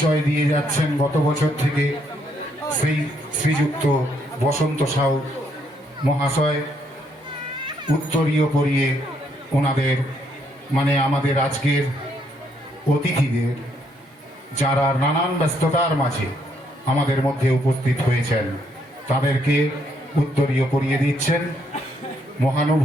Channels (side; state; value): both; normal; correlation 0.72